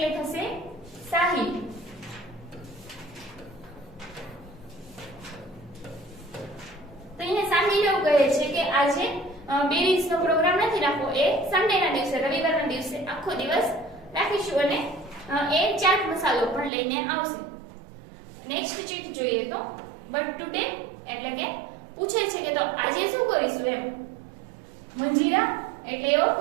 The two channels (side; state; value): left; drops out; at 16.7 s